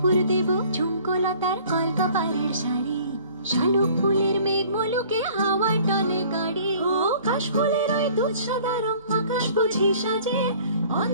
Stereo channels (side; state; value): both; inverted; correlation -0.51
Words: দেব ঝুমকোলতার কলকাপাড়ের শাড়ি, শালুক ফুলের মেঘ মলুকে হাওয়ার টানে গাড়ি, ও কাশ ফুলের ওই দুধ সাদা রং আকাশ বুঝি সাজে,